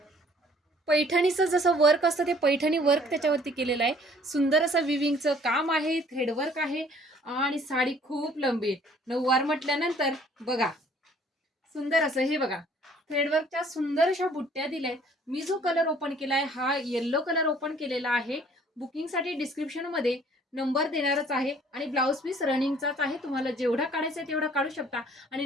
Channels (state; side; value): normal; both; correlation 0.57